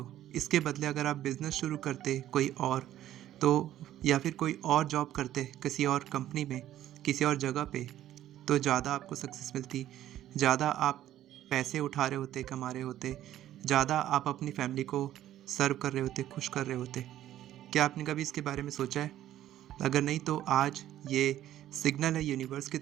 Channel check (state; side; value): quieter; left; 12.6 dB